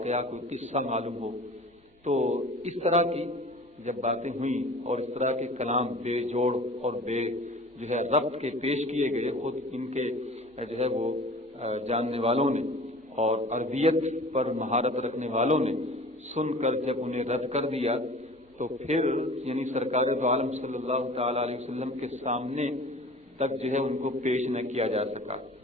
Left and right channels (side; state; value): both; normal; correlation 0.43